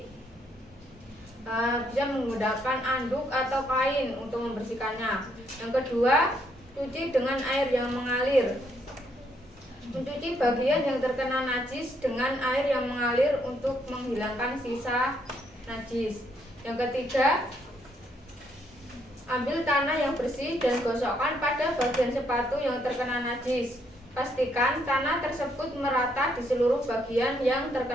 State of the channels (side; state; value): both; normal; correlation 0.73